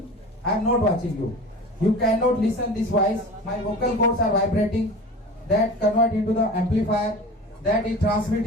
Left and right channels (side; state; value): both; normal; correlation 0.35